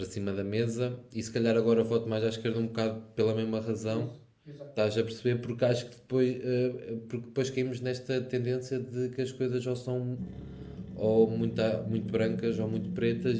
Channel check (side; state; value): both; identical; correlation 1.00